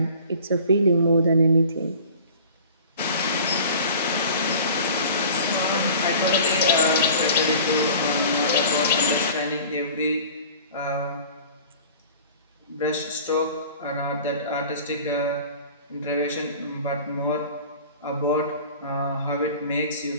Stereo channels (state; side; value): inverted; both; correlation -0.43